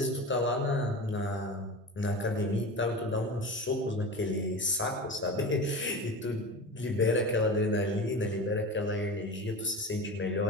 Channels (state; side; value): normal; both; correlation 0.29